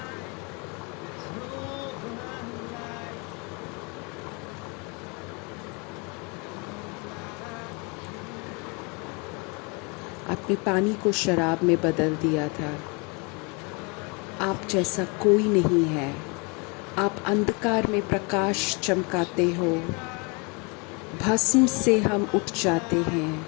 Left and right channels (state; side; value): quieter; right; 31.2 dB